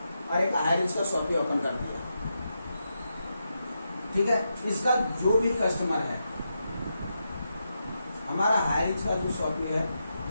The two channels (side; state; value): both; inverted; correlation -0.85